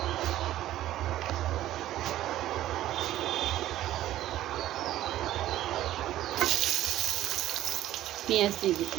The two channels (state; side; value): quieter; left; 13.8 dB